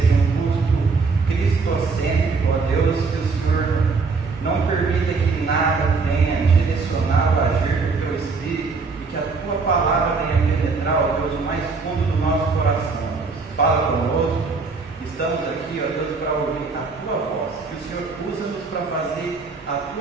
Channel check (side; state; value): left; quieter; 4.4 dB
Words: um culto cristocêntrico, ó Deus, que o Senhor não permita que nada venha direcionar o agir do Teu Espírito e que a Tua palavra venha penetrar, ó Deus, o mais fundo do nosso coração. Fala conosco, estamos aqui, ó Deus, para ouvir a Tua voz, que o Senhor usa-nos para fazer a